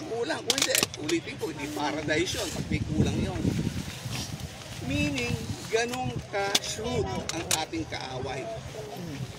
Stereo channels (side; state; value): both; identical; correlation 1.00